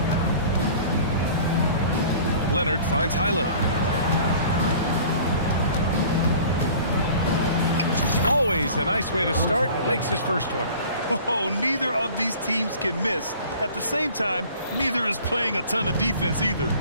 Leonard finds Highland. Always a nice way to start. Makes his first one. Oh, neither of these teams can miss. At the same time, neither is playing a ton of defense either.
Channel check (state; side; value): inverted; both; correlation -0.46